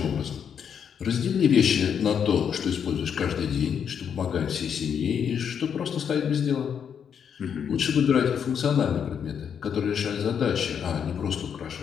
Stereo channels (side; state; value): right; quieter; 7.7 dB